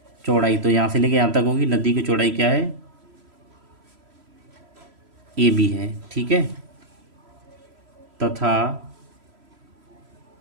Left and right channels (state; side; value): late; left; 3.0 ms